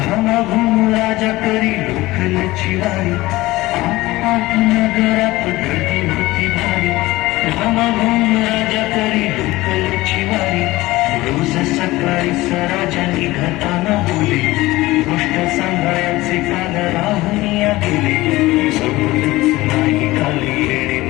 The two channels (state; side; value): quieter; right; 18.9 dB